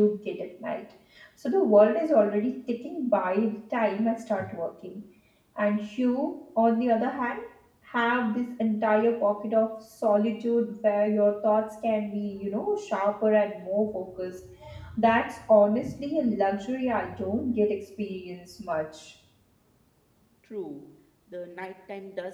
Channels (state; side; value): identical; both; correlation 1.00